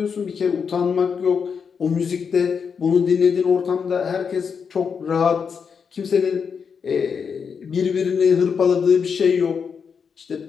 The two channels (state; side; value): quieter; right; 6.3 dB